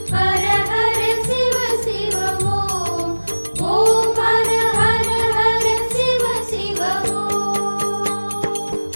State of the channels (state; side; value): inverted; both; correlation -1.00